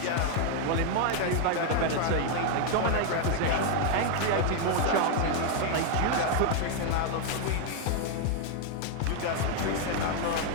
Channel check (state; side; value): different; both; correlation 0.00